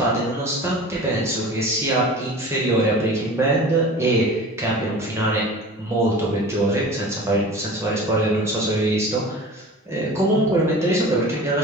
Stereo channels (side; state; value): both; normal; correlation 0.38